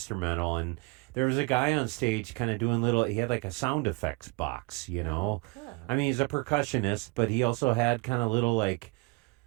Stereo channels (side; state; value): left; quieter; 26.3 dB